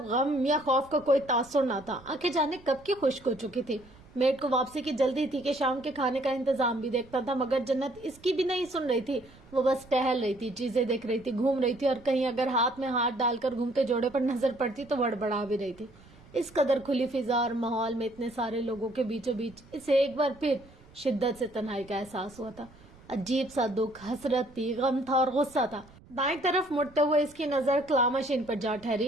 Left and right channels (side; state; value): right; noise; rumble, 24 dB below the sound